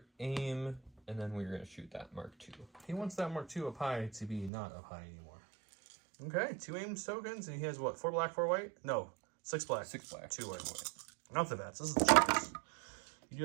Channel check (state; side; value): drops out; left; at 4.5 s